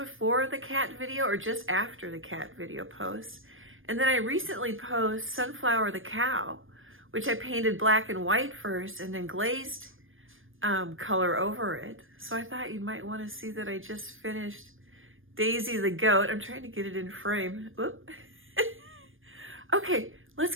the cat video or just after the cat video post. And then I recently posted Sunflower the cow, which I painted black and white first and then glazed color over it. So I thought you might want to see that I just finished Daisy the goat. I'm trying to get it in frame. Whoop. Okay,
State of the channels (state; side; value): late; left; 0.59 ms